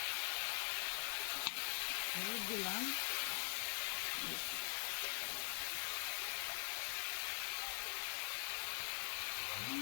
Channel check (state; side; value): silent; right; digital silence